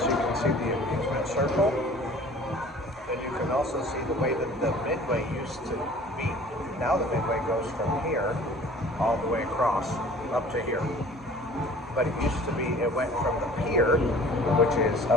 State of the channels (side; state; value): both; normal; correlation 0.48